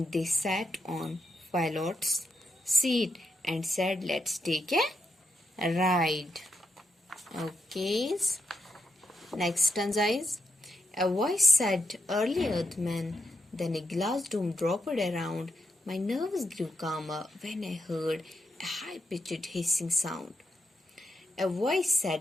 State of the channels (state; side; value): normal; both; correlation 0.84